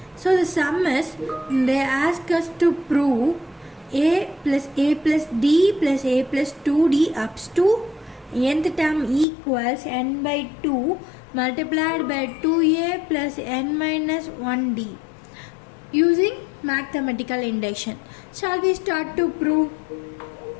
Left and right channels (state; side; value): drops out; right; at 9.2 s